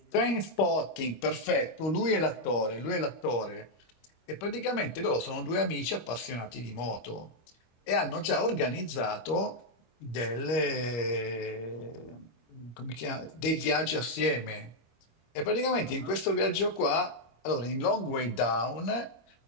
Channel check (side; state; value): right; late; 26 ms